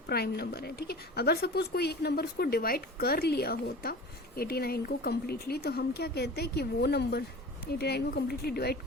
प्राइम नंबर है। ठीक है, अगर सपोज कोई एक नंबर उसको डिवाइड कर लिया होता 89 को कम्प्लीटली, तो हम क्या कहते हैं कि वो नंबर 89 को कम्प्लीटली डिवाइड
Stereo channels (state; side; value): normal; both; correlation 0.38